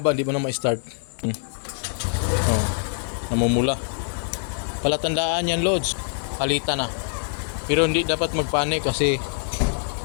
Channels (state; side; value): silent; right; digital silence